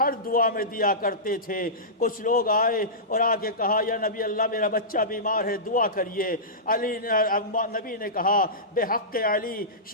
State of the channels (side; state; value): both; normal; correlation -0.18